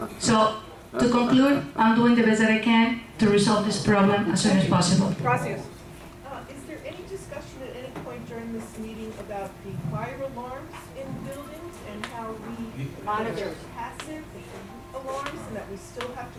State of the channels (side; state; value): both; identical; correlation 1.00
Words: so to conclude, I'm doing the best that I can to resolve this problem as soon as possible. Gracias. Is there any discussion at any point during this meeting about the fire alarms in buildings and how we Monitors. passive alarms and that we still have